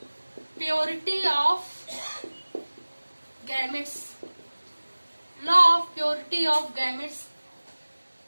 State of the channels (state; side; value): inverted; both; correlation -1.00